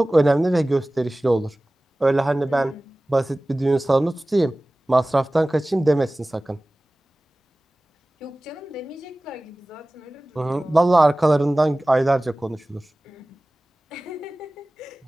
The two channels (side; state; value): both; normal; correlation 0.98